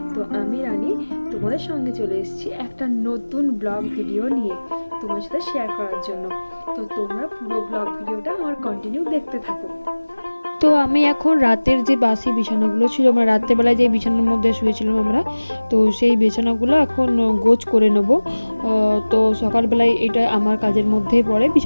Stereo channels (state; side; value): inverted; both; correlation -1.00